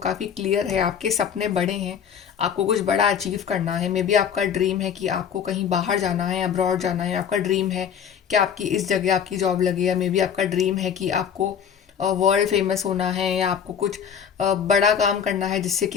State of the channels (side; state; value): right; quieter; 8.0 dB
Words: क्लियर है। आपके सपने बड़े हैं, आपको कुछ बड़ा अचीव करना है। मे बी आपका ड्रीम है कि आपको कहीं बाहर जाना है, अब्रॉड जाना है। आपका ड्रीम है कि आपकी इस जगह आपकी जॉब लगे, या मे बी आपका ड्रीम है कि आपको वर्ल्ड फेमस होना है, या आपको कुछ बड़ा काम करना है जिससे